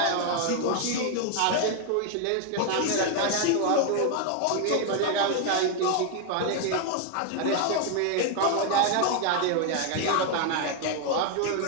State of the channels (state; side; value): different; both; correlation 0.01